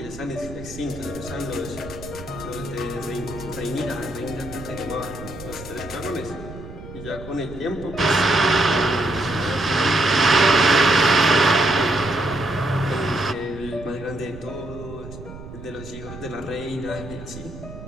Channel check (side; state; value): right; noise; rumble, 13 dB below the sound